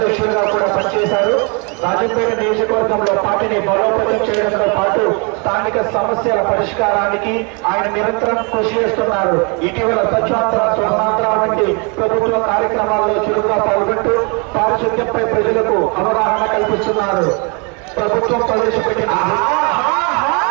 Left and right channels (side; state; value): left; quieter; 33.5 dB